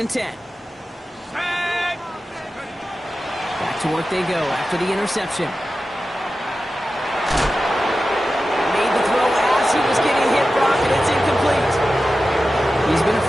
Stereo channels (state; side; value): normal; both; correlation 0.93